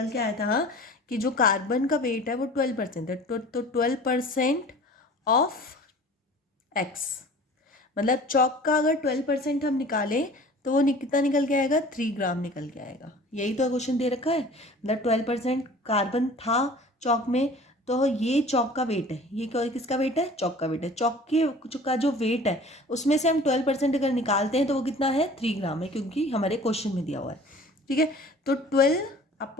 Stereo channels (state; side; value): normal; both; correlation 0.45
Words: के आया था कि जो कार्बन का वेट है वो 12% है। तो 12% ऑफ x, मतलब चॉक का अगर 12% हम निकालें तो वो कितना निकल के आएगा, 3 ग्राम निकल के आएगा। यही तो क्वेश्चन दे रखा है, मतलब 12% कार्बन था चॉक में, तो ये चॉक का वेट है। ये किसका वेट है, चॉक का वेट है। चॉक के का जो वेट है उसमें से हम 12% अगर निकालते हैं तो वो कितना है, 3 ग्राम है, क्योंकि हमारे क्वेश्चन में दिया हुआ है। ठीक है, तो